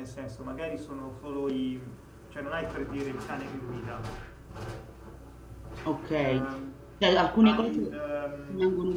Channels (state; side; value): identical; both; correlation 1.00